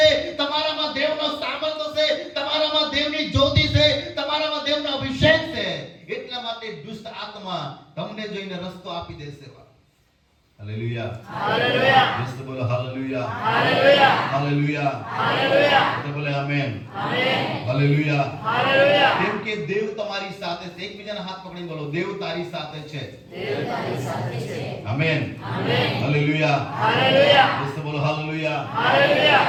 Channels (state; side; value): identical; both; correlation 1.00